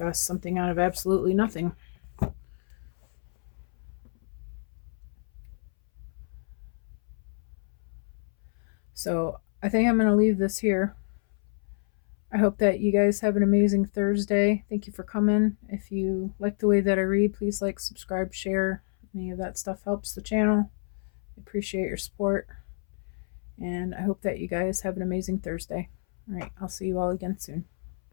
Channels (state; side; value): silent; right; 59 dB below the other